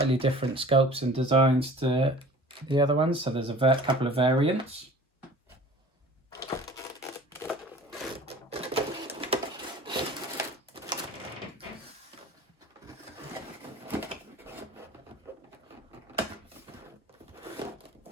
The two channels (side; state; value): both; normal; correlation 0.44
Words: different sculpts and designs to the other ones. So there's a couple of variants.